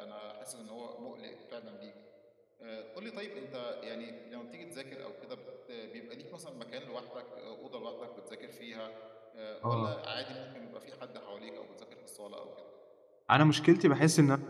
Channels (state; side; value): identical; both; correlation 1.00